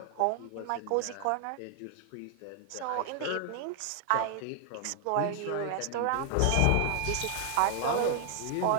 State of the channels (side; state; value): both; different; correlation 0.00